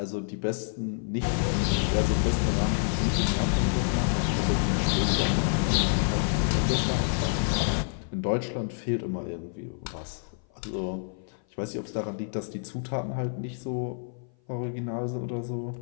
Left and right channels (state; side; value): silent; right; 56 dB below the other